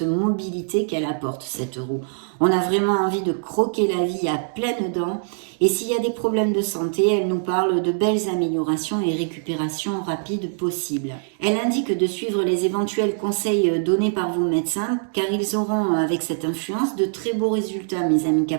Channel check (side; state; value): left; silent; digital silence